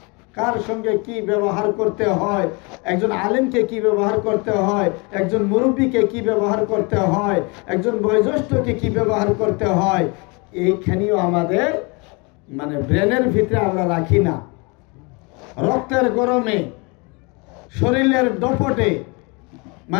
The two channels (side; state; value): right; quieter; 29.7 dB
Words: কার সঙ্গে কি ব্যবহার করতে হয়, একজন আলেমকে কি ব্যবহার করতে হয়, একজন মুরব্বীকে কি ব্যবহার করতে হয়, একজন বয়োজ্যেষ্ঠকে কি ব্যবহার করতে হয়, এইখানেও আমাদের ব্রেনের ভিতরে আমরা রাখি না। রক্তের গরমে, শরীরের দপটে